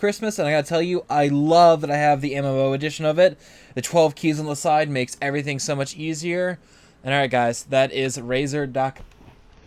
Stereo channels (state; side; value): identical; both; correlation 1.00